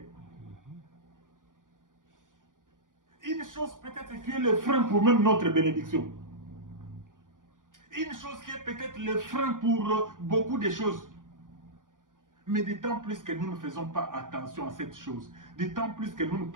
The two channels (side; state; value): left; late; 0.89 ms